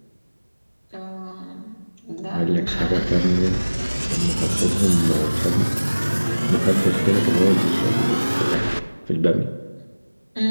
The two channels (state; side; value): inverted; both; correlation -1.00